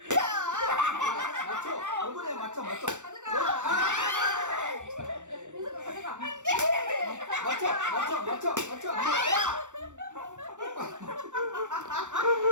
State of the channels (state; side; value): late; left; 0.85 ms